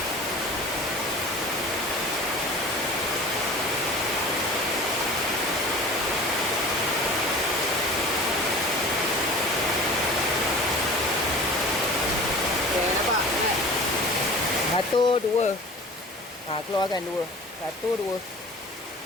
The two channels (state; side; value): normal; both; correlation 0.40